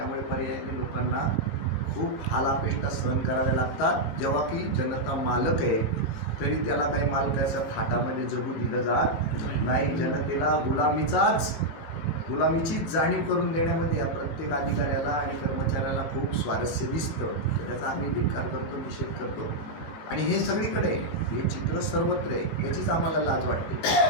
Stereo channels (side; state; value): right; late; 19 ms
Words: पर्यायाने लोकांना खूप हालापेष्टा सहन कराव्या लागतात. जेव्हा की जनता मालक आहे तरी त्याला काही मालकाच्या थाटामध्ये जगू दिलं जात नाही. जनतेला गुलामीचीच जाणीव करून देण्यामध्ये या प्रत्येक अधिकाऱ्याला आणि कर्मचाऱ्याला खूप स्वारस्य दिसतं. तर त्याचा आम्ही धिक्कार करतो, निषेध करतो. आणि हे सगळीकडे हे चित्र सर्वत्र आहे. याचीच आम्हाला लाज